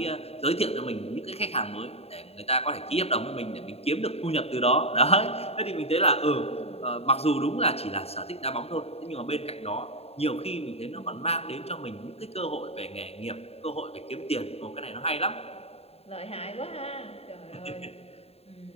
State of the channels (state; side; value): late; right; 0.29 ms